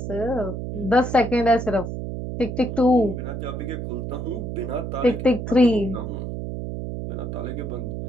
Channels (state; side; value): noise; right; hum, 5 dB below the sound